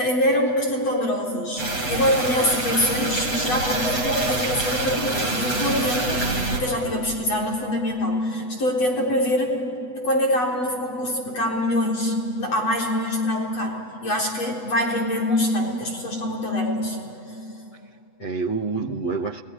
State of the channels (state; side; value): late; right; 8.1 ms